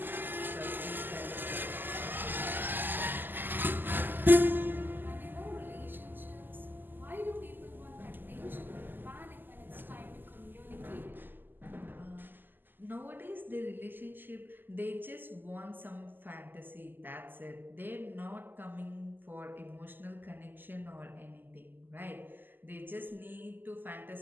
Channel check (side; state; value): left; late; 0.091 ms